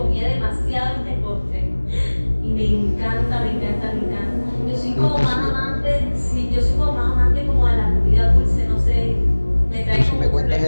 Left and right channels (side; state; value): both; inverted; correlation -1.00